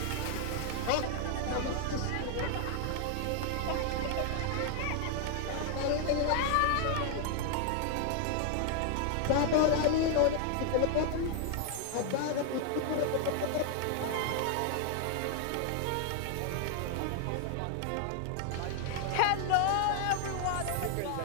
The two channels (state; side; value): different; both; correlation 0.00